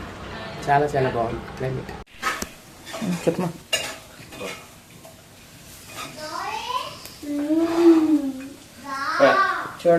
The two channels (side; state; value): both; identical; correlation 1.00